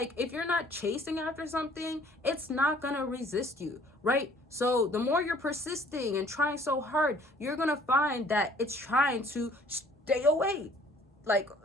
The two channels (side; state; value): both; normal; correlation 0.56